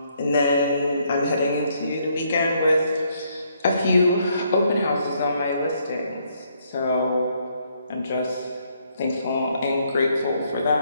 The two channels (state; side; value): inverted; both; correlation -0.71